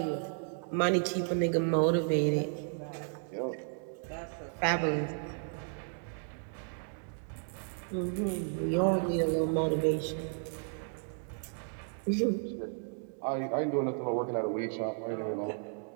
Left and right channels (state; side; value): silent; left; 55 dB below the other